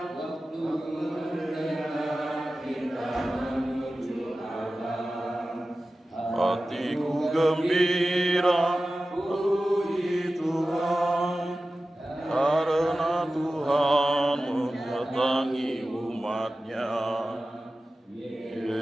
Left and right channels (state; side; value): normal; both; correlation 0.95